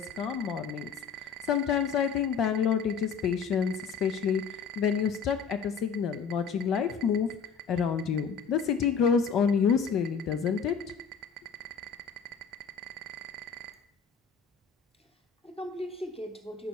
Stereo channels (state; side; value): quieter; right; 6.2 dB